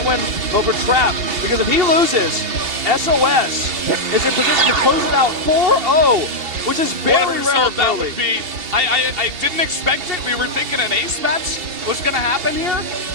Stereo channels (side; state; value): left; late; 2.7 ms